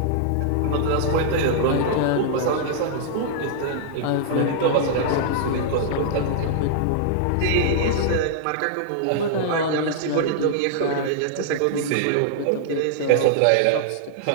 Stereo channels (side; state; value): both; different; correlation -0.01